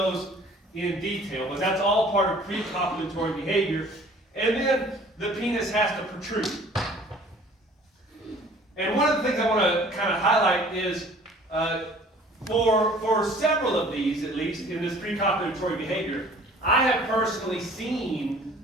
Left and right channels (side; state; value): both; normal; correlation 0.51